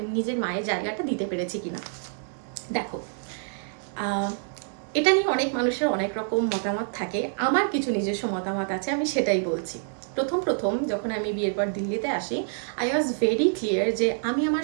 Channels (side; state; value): left; silent; digital silence